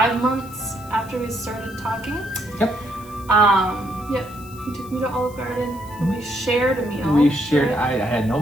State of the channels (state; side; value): noise; left; hiss, 21 dB below the sound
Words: months after we started talking. Yep. He took me to Olive Garden and we shared a meal. We shared, right? I had no